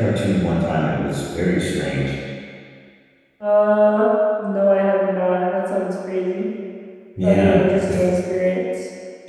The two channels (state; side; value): identical; both; correlation 1.00